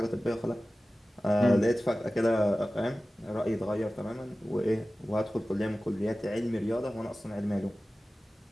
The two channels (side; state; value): both; normal; correlation 0.96